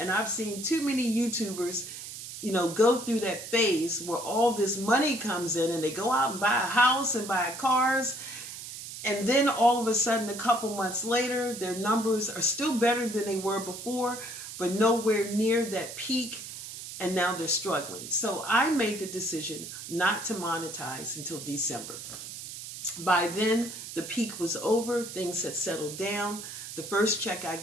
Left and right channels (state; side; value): noise; right; hiss, 10 dB below the sound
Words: I've seen too many YouTubers, go through that phase where all this money comes in and they go out and buy a house and buy cars. And then all of a sudden, a couple months later, their numbers are still better than they were before, but nowhere near that peak. And now they're struggling. So I made the decision not to monetize until December. By then, the peak was over. Things had settled down. The first check I